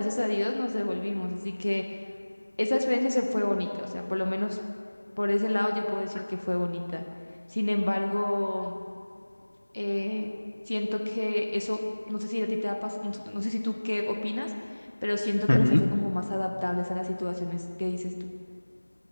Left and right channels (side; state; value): both; inverted; correlation -1.00